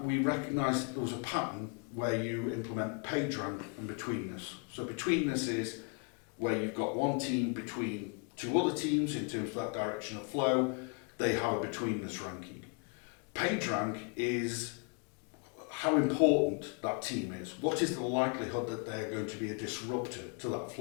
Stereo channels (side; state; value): right; quieter; 35.2 dB